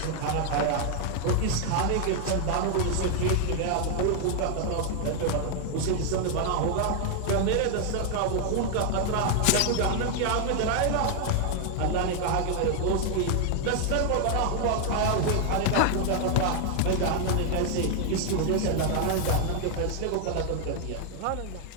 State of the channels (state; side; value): different; both; correlation 0.00